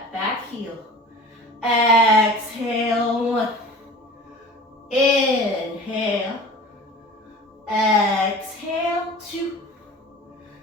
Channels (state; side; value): normal; both; correlation 0.40